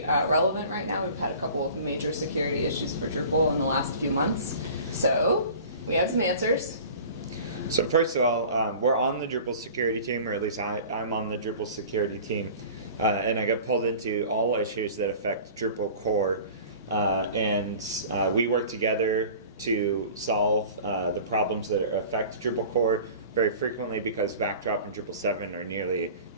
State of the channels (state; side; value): inverted; both; correlation -0.42